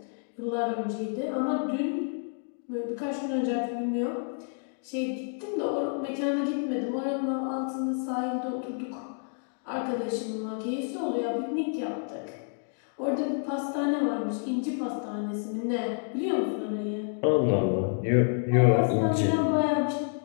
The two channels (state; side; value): silent; right; 58 dB below the other